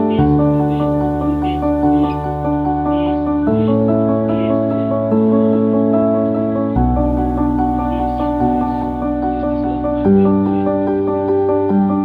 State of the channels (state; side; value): identical; both; correlation 1.00